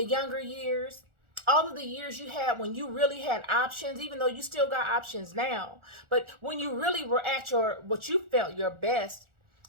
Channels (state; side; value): late; left; 1.4 ms